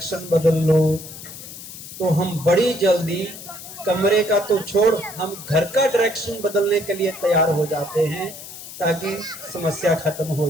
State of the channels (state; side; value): noise; left; hiss, 13 dB below the sound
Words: बदल लो, तो हम बड़ी जल्दी कमरे का तो छोड़, हम घर का डायरेक्शन बदलने के लिए तैयार हो जाते हैं ताकि समस्या खत्म हो